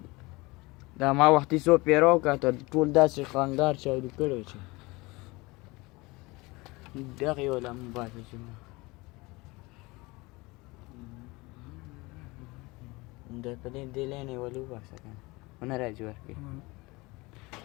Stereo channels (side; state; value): right; quieter; 23.4 dB